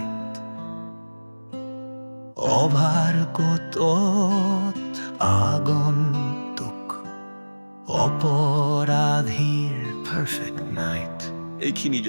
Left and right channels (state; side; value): inverted; both; correlation -1.00